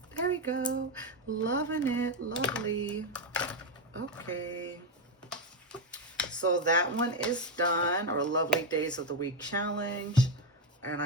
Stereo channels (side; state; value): both; normal; correlation 0.07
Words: There we go. Loving it. Lovely. Okay. So that one is done, our Lovely Days of the Week challenge. And